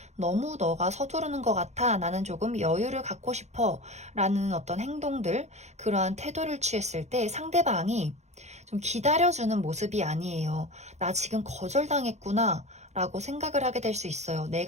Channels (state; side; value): late; left; 0.33 ms